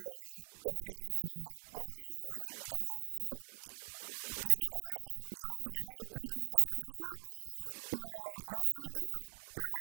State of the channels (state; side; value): silent; left; digital silence